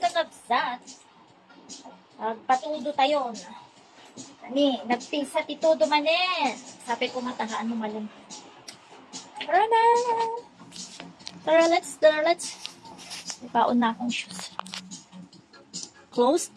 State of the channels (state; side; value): identical; both; correlation 1.00